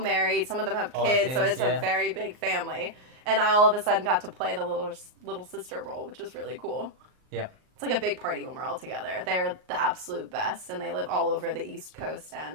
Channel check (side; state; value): left; late; 39 ms